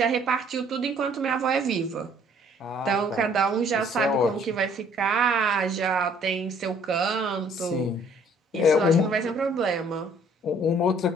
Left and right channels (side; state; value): both; normal; correlation 0.59